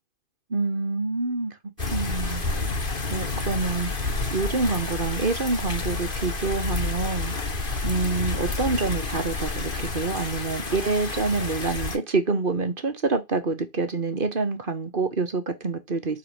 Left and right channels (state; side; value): late; left; 2.5 ms